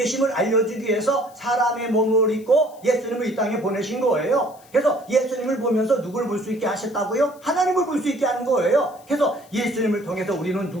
알려주기 위해서 사람의 몸을 입고 예수님을 이 땅에 보내신 거예요. 그래서 예수님을 보면서 누구를 볼 수 있게 하셨다고요? 하나님을 볼 수 있게 하는 거예요. 그래서 예수님을 통해서 우리는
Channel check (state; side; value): noise; left; hiss, 27 dB below the sound